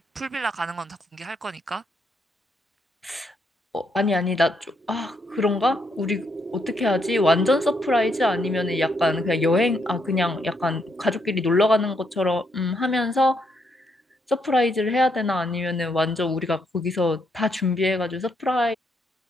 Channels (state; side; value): normal; both; correlation 0.76